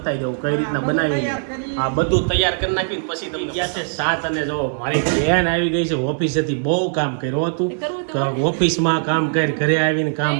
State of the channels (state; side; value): silent; left; 66 dB below the other